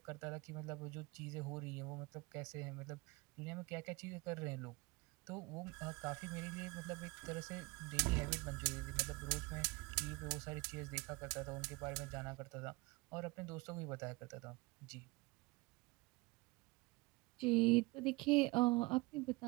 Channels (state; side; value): quieter; left; 24.3 dB